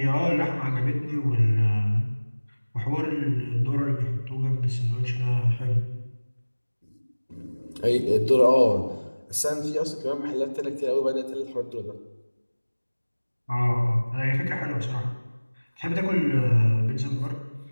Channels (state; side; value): inverted; both; correlation -1.00